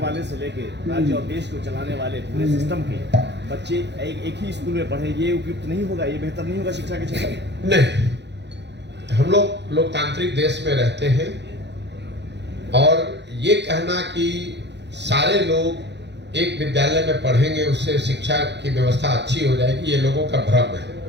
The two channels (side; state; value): left; late; 0.50 ms